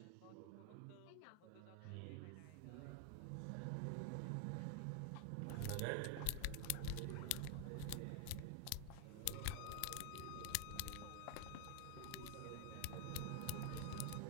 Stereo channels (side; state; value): both; different; correlation 0.00